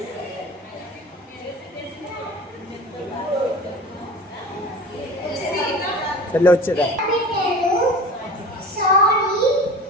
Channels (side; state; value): both; normal; correlation 0.38